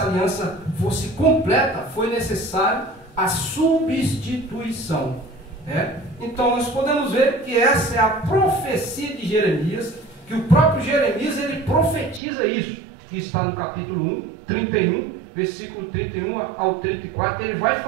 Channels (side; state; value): left; drops out; at 12.2 s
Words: aliança fosse completa, foi necessário a substituição. Então, nós podemos ver que essa é a profecia de Jeremias, que o próprio Jeremias, ele profetiza isso, que está no capítulo 31, versículo 31 ao 34, ele vai